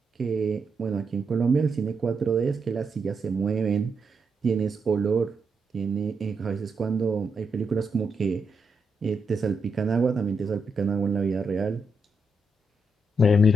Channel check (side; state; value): both; normal; correlation 0.83